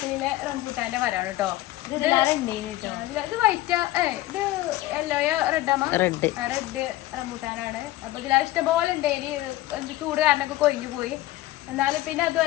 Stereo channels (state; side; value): quieter; right; 16.5 dB